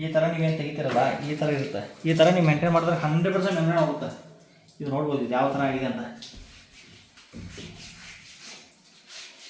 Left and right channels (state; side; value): identical; both; correlation 1.00